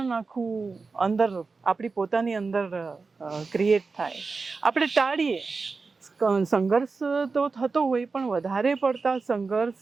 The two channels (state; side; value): quieter; left; 4.3 dB